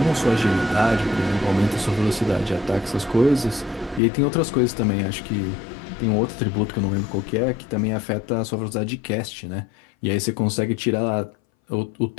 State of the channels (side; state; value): right; drops out; at 4.0 s